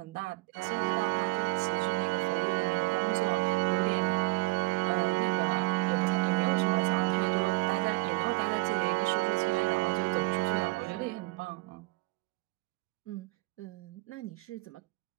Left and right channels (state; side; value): quieter; left; 23.4 dB